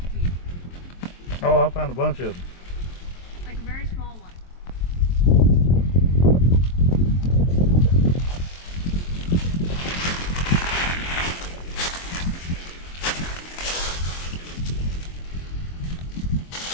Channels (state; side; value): late; right; 23 ms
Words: Oh, I found a bunch of them. Like a very small one.